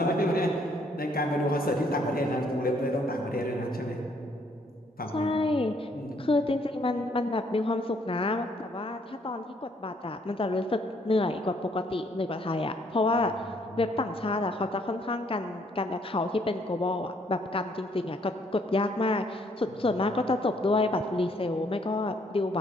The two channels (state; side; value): normal; both; correlation 0.67